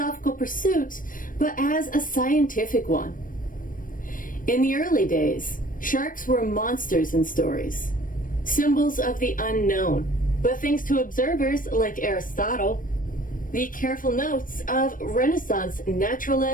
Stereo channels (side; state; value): right; late; 0.40 ms